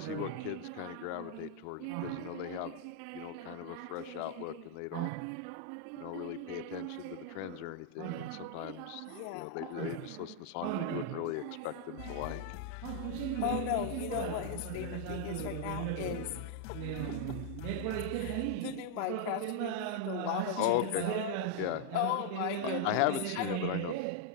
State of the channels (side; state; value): both; different; correlation 0.00